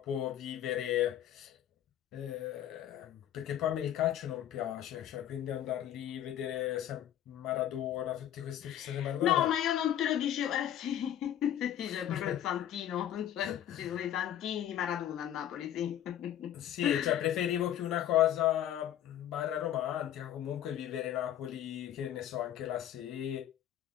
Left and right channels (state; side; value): quieter; right; 11.2 dB